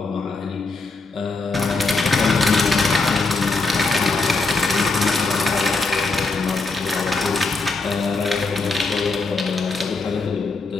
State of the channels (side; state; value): right; quieter; 3.7 dB